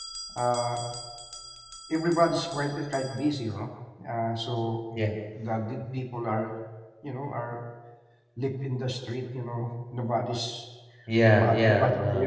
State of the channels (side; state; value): both; identical; correlation 1.00